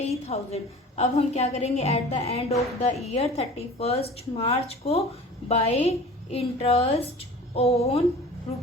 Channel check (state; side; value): normal; both; correlation 0.41